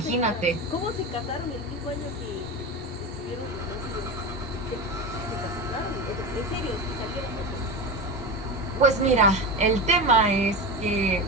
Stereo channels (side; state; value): both; normal; correlation 0.23